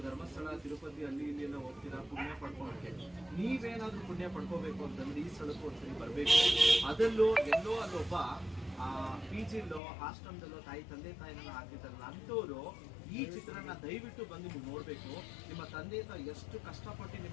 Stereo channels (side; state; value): right; drops out; at 9.8 s